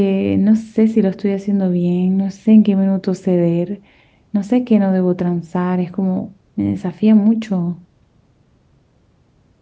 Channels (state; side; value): identical; both; correlation 1.00